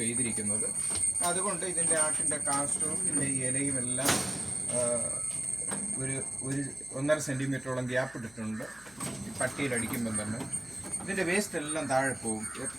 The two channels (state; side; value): noise; left; hum, 26 dB below the sound